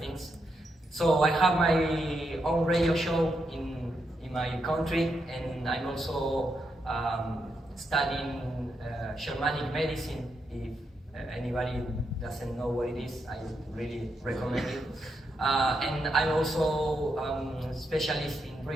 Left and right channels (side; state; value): both; normal; correlation 0.82